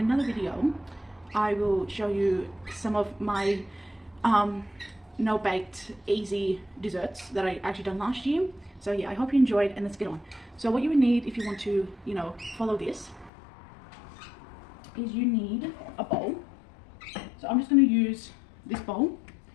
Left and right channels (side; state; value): right; drops out; at 13.3 s